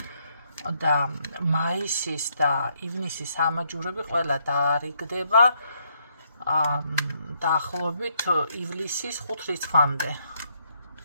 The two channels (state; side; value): inverted; both; correlation -0.73